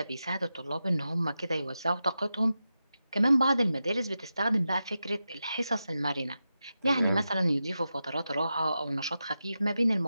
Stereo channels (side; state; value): both; inverted; correlation -0.91